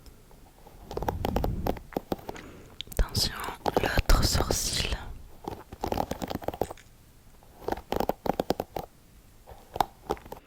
Attention, l'autre sourcil.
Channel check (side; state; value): both; identical; correlation 1.00